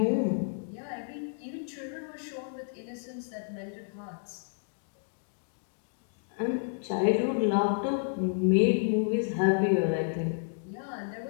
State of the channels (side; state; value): right; silent; digital silence